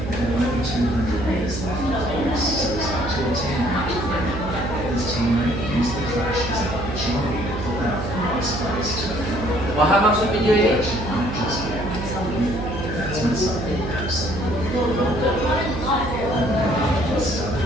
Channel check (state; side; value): noise; right; hum, 6 dB below the sound